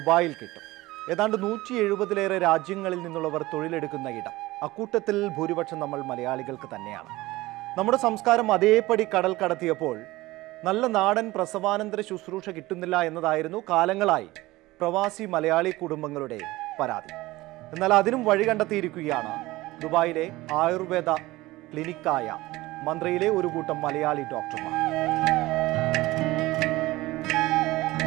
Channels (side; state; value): left; quieter; 19.0 dB